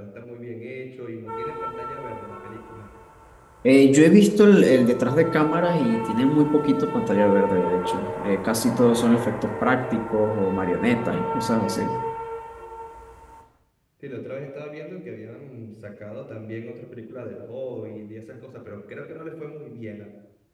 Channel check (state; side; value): identical; both; correlation 1.00